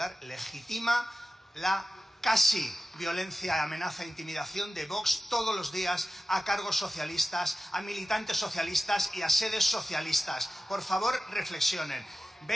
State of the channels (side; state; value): both; normal; correlation 0.94